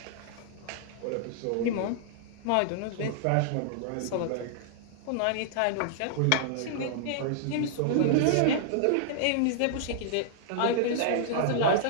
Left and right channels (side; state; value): both; different; correlation -0.01